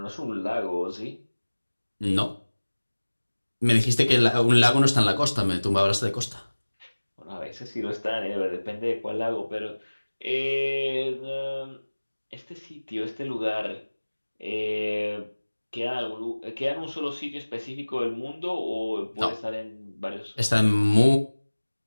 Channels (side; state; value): both; inverted; correlation -1.00